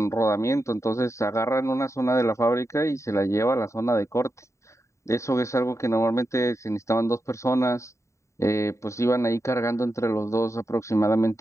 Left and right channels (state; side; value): late; right; 0.14 ms